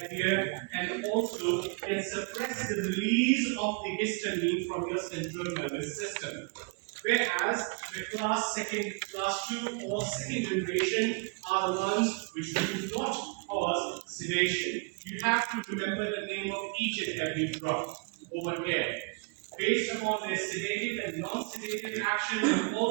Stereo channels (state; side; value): quieter; left; 32.9 dB